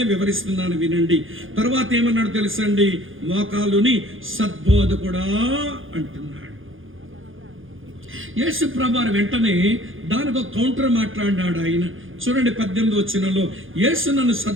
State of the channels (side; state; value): left; late; 0.58 ms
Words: వివరిస్తున్నాను, వినండి. తర్వాత ఏమన్నాడు తెలుసండి? మోకాలుని సద్బోధకుడా అంటున్నాడు. యేసు ప్రభువారు వెంటనే దానికి ఒక కౌంటర్ మాట్లాడినాడు ఆయన. చూడండి 18వ వచనంలో, యేసు నన్ను